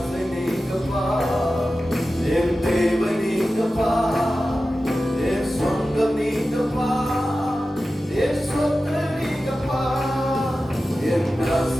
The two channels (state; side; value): normal; both; correlation 0.94